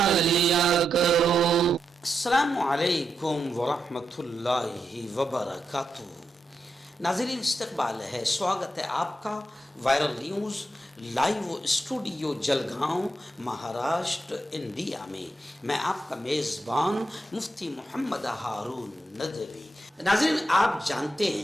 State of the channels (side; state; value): both; normal; correlation 0.85